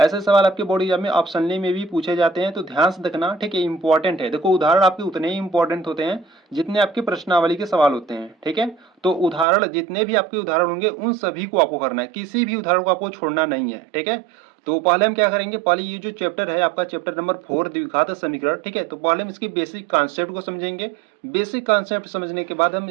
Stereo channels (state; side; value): drops out; left; at 9.5 s